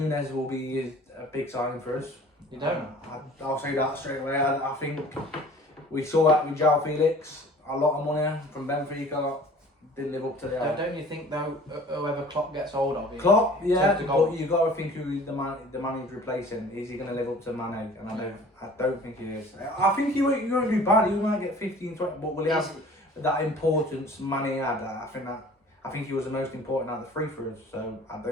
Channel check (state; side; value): normal; both; correlation 0.47